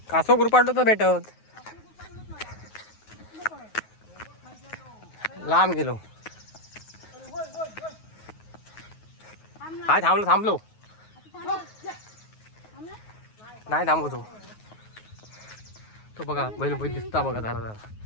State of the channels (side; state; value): right; late; 9.4 ms